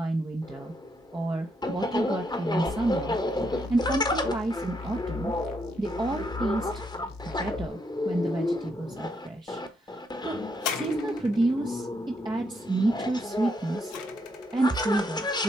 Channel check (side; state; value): both; normal; correlation 0.77